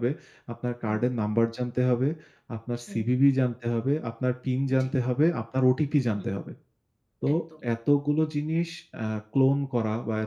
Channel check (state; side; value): identical; both; correlation 1.00